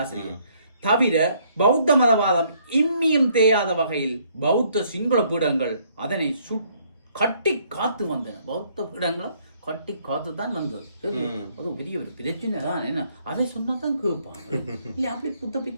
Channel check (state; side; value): inverted; both; correlation -0.66